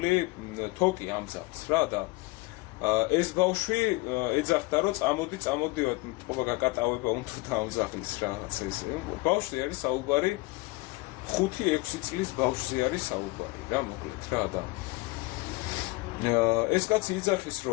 თოკი ამ ძაღლს რა და ეს ბავშვი ეძახდა, რომ წამოდივად, თქო გაკატავება უნდა ამ ძაღლის რაღაც ეს. ბავშვი არის საუბარი 5-6 წლის ბავშვზე არის საუბარი რა, მოკლედ რა და ეს კაცი იძახის,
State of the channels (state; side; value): quieter; right; 22.7 dB